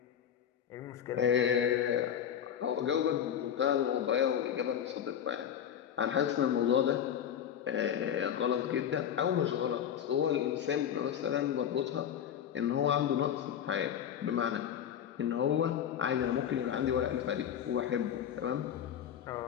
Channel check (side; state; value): right; quieter; 9.2 dB